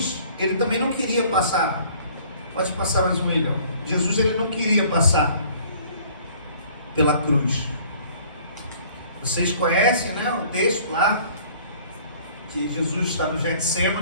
ele também não queria passar. Pode passar mais um, William. Jesus, ele não queria passar pela cruz. Vocês conhecem, né, o texto lá, que Jesus está no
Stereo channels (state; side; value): inverted; both; correlation -0.54